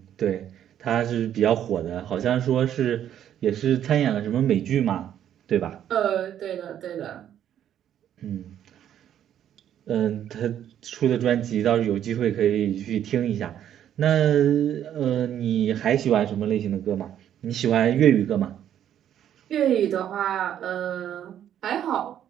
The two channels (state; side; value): quieter; left; 10.4 dB